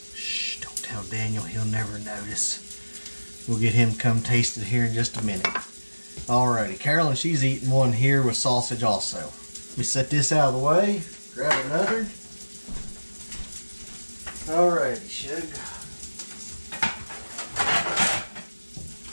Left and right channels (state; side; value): inverted; both; correlation -1.00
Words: Shh, don't tell Daniel, he'll never notice. We'll get him to come taste it here in just a minute. Alrighty, Carolyn, she's eating one here with sausage also. Let me set this out of the way. Grab another. Alrighty, Shug.